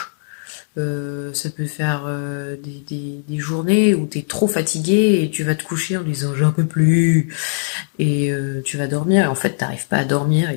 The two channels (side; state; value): right; silent; digital silence